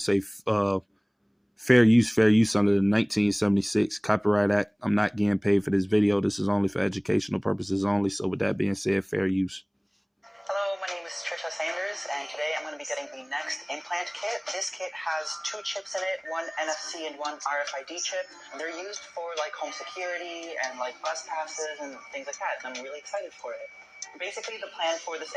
say fair use under the 1976 Copyright Act. I'm not getting paid for this video. This is only for educational purposes only. So with that being said, fair use. Hello, my name is Trisha Sanders, and today I'm going to be getting the next implant kit. This kit has 2 chips in it, one NFC and one RFID chip. They're used for like home security and like bus passes and things like that, and I'm really excited for it. Basically, the plan for this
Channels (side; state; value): both; identical; correlation 1.00